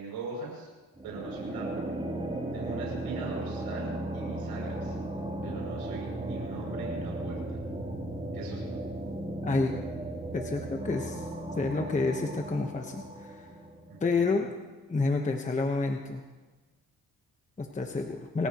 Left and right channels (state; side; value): normal; both; correlation 0.67